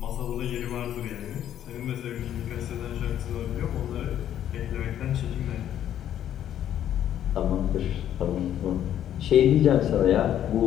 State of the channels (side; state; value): right; quieter; 10.8 dB